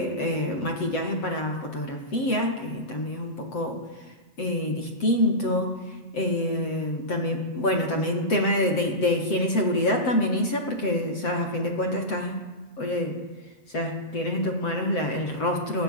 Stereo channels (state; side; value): late; right; 7.8 ms